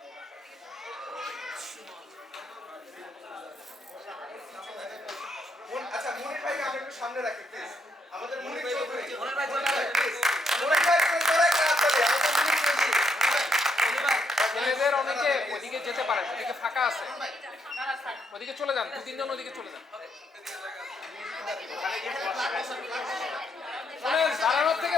আচ্ছা মনির ভাই আমরা একটু সামনে রাখি প্লিজ। আমাদের মনির চৌধুরী, মনির ভাই প্লিজ, মনির ভাই করে একটা হাত তালি। আমাদের মনির চৌধুরী, মনির ভাই ছেলেদের অনেকে ওইদিকে যেতে পারেন, ওদিকে ফাঁকা আছে, ওদিকে চলে যান, 2-3 জন ওদিকে চলে যান। শোনেন, দাঁড়ানোর থেকে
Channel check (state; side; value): normal; both; correlation 0.76